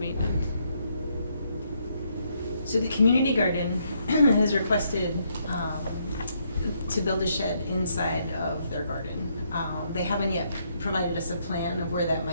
So the community garden has requested to build a shed inside of their garden. They haven't yet provided us a plan of where that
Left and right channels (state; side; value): inverted; both; correlation -0.74